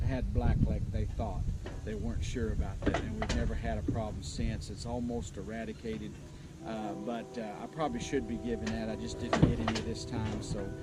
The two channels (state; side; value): identical; both; correlation 1.00